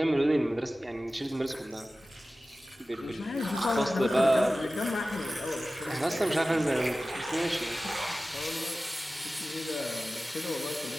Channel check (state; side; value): normal; both; correlation 0.95